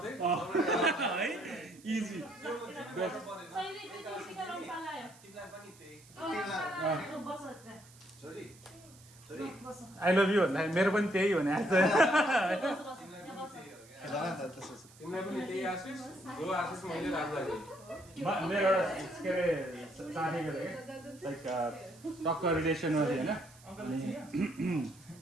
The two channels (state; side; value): noise; right; hiss, 24 dB below the sound